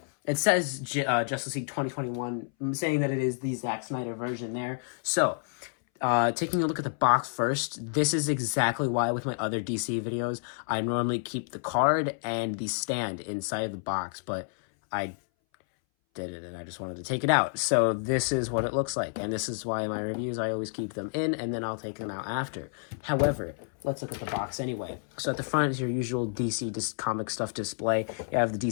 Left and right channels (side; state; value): right; silent; 58 dB below the other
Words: it says Justice League 2021, saying that it is the Zack Snyder version there. So taking a look at the box first, this is exactly why with my other DC videos, I normally keep the card and the stand inside of the box, but I did it and I just wanted to take it out. So this is what it looks like, and this is why in my reviews I always keep them in and then I'll take them out after. However, let's look at the box anyway. So at the front is your usual DC comic stuff display. You have the